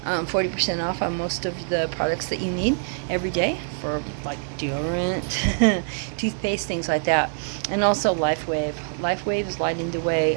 40% off on most of the products that you need every day for like deodorant, toothpaste, things like that. And also LifeWave. LifeWave is lighting the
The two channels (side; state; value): left; silent; 62 dB below the other